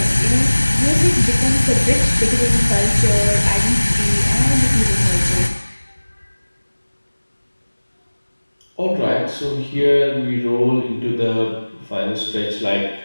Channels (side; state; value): both; inverted; correlation -1.00